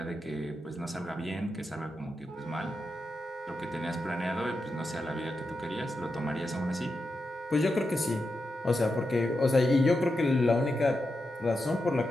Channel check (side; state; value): both; normal; correlation 0.88